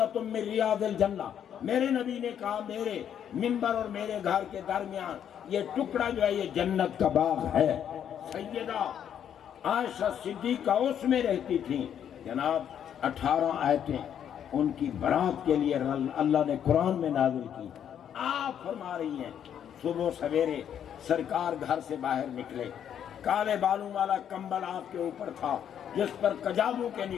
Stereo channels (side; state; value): right; quieter; 9.2 dB